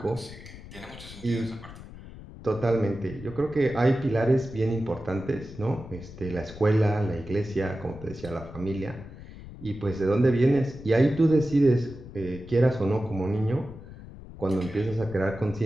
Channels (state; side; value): noise; left; rumble, 15 dB below the sound